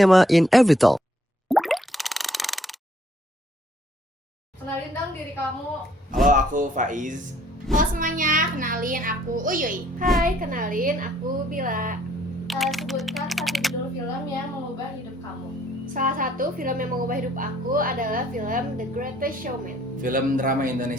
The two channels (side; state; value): both; normal; correlation 0.64